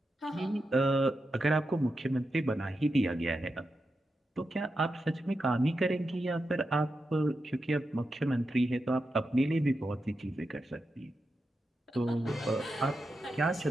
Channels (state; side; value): normal; both; correlation 0.88